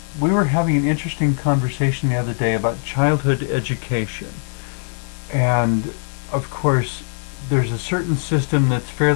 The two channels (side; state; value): right; silent; digital silence